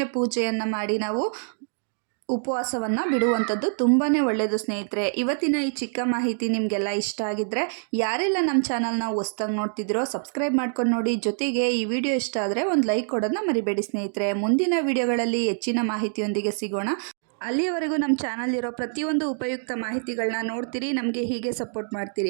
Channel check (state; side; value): silent; left; digital silence